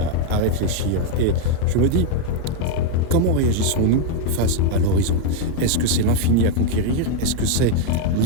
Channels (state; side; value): different; both; correlation 0.01